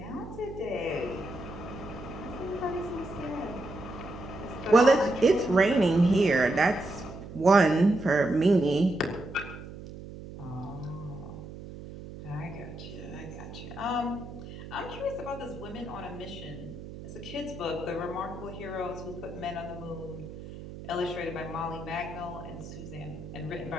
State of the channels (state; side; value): noise; right; hum, 12 dB below the sound